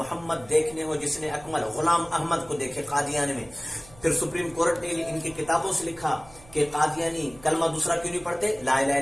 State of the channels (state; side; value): noise; right; hum, 23 dB below the sound